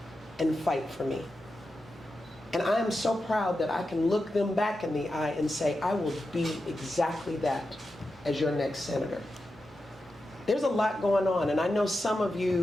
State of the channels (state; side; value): normal; both; correlation 0.90